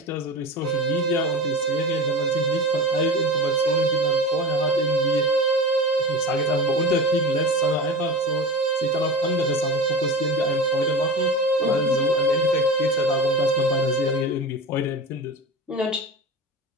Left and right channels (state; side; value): normal; both; correlation 0.30